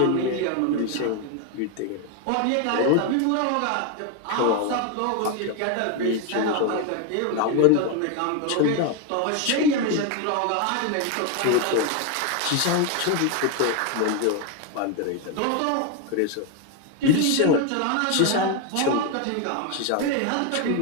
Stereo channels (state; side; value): different; both; correlation 0.01